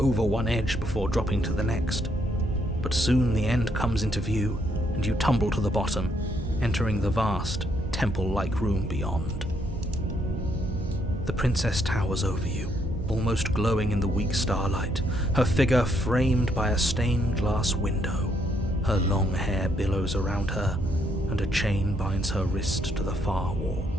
one edge before dropping to the next. But soon the end comes into view, and you tumble to the bottom, entering the vast, temple-like room beyond. The princess towers over you, almost glowing in the weak starlight, her figure framed by a stained glass window. Her long hair billows around her, and a chain binds her wrist to the far wall.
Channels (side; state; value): both; normal; correlation 0.73